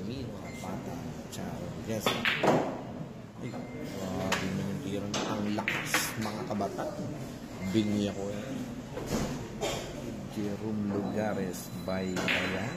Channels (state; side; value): identical; both; correlation 1.00